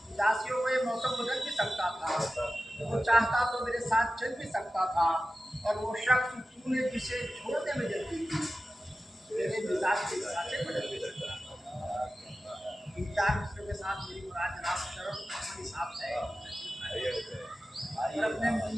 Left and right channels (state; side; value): normal; both; correlation 0.94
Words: उदासियों का ये मौसम बदल भी सकता था, वो चाहता तो मेरे साथ चल भी सकता था, और वो शख्स तूने जिसे छोड़ने में जल्दी की, मेरे मिजाज के हिसाब से बदल भी सकता था। इन चार मिसरों के साथ मेरी मुराद जनाब शर्म अपने हिसाब से है, और अपने